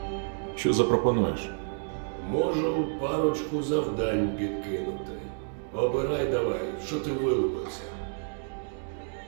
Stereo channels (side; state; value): left; silent; 58 dB below the other